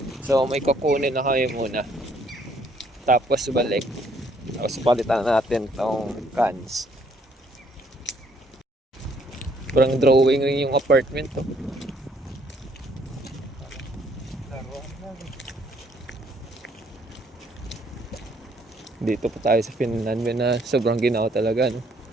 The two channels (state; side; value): normal; both; correlation 0.66